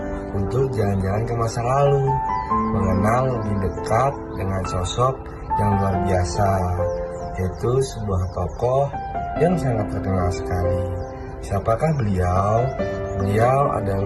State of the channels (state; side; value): identical; both; correlation 1.00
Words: untuk jalan-jalan ke masa lalu, mengenal lebih dekat dengan sosok yang luar biasa, yaitu sebuah tokoh yang sangat terkenal sekali. Siapakah beliau? Beliau